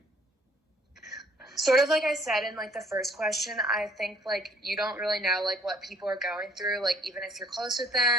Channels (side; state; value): both; normal; correlation 0.61